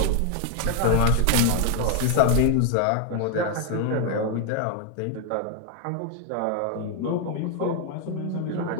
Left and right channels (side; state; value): both; different; correlation 0.00